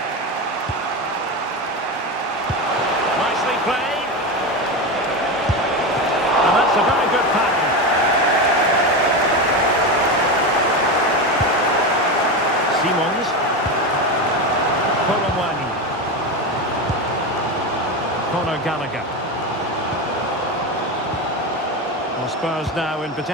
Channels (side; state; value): both; normal; correlation 0.18